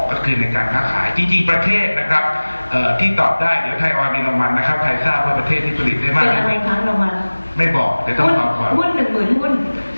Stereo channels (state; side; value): inverted; both; correlation -1.00